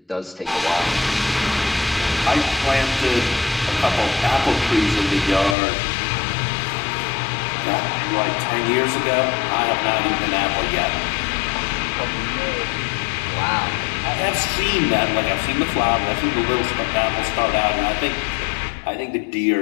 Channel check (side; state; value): right; drops out; at 5.6 s